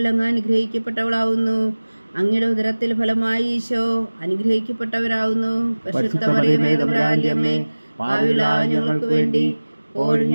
അങ്ങ് അനുഗ്രഹിക്കപ്പെട്ടവളാവുന്നു. അങ്ങയുടെ ഉദരത്തിൽ ഫലമായി ഈശോ അനുഗ്രഹിക്കപ്പെട്ടവരാകുന്നു. പരിശുദ്ധ മറിയമേ തമ്പുരാന്റെ അമ്മേ, പാപികളായ ഞങ്ങൾക്ക് വേണ്ടി ഇപ്പോഴും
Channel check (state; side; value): inverted; both; correlation -1.00